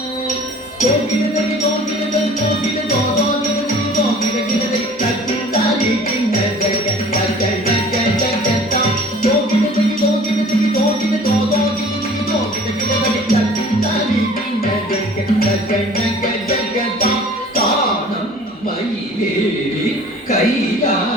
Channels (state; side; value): normal; both; correlation 0.48